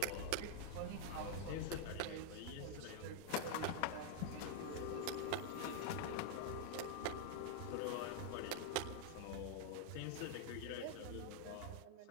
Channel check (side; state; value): both; different; correlation -0.01